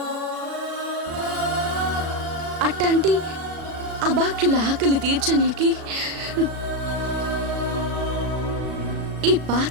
అట్లాంటి అభాగ్యుల ఆకలి తీర్చనీకి ఈ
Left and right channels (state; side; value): late; left; 36 ms